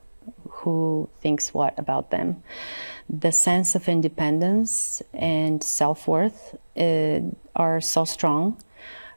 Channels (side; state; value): both; inverted; correlation -1.00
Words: who thinks what about them. The sense of independence and self-worth are so strong